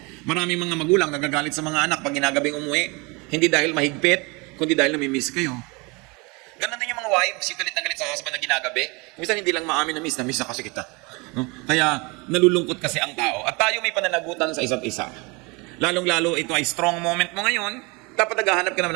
Maraming mga magulang nagagalit sa mga anak pag ginagabing umuwi, hindi dahil mahigpit, kundi dahil namimiss kayo. Ganun din yung mga wives, galit na galit sa husband na ginagabi. Kumisan hindi lang maamin na miss na kasi kita. No? Kaya nalulungkot kasi ang tao. At tayo may pananagutan sa isa't isa. Lalong-lalo ito ay strong moment mo ngayon, dapat naghahanap ka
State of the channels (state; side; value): quieter; left; 27.9 dB